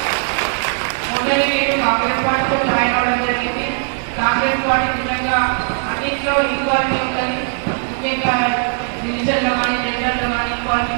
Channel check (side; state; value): left; silent; 62 dB below the other